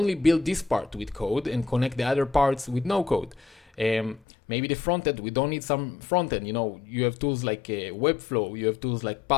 build this part with code and connect the other parts with no code. Maybe the front end, we don't need some front end. You have tools like Webflow, you have tools like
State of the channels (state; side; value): drops out; right; at 4.2 s